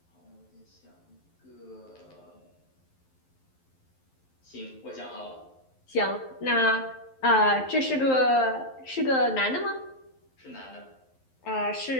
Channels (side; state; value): right; late; 11 ms